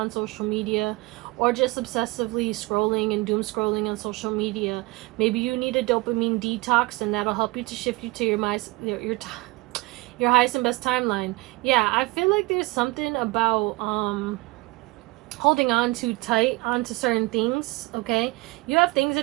social media. Or just obsessively scrolling and doom scrolling on social media. Maybe you need a dopamine detox and that'll help you to shift you to your highest and best timeline. Yeah, I feel like there's something about holding on too tight onto certain things, okay? You have things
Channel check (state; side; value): quieter; left; 22.8 dB